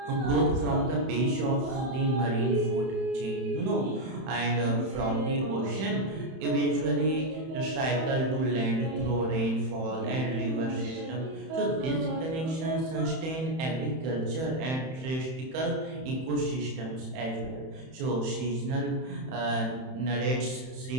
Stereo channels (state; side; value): late; left; 31 ms